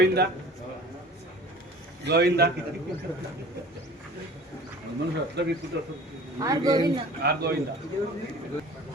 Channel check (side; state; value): both; normal; correlation 0.44